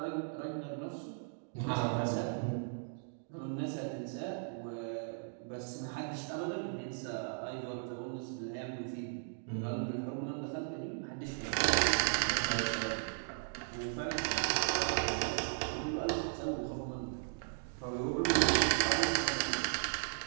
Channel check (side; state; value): left; silent; digital silence